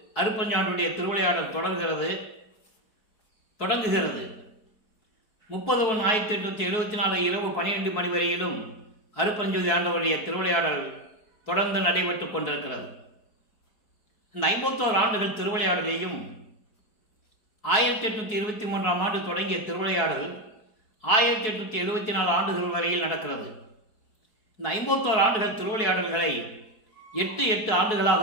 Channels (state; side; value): late; right; 4.6 ms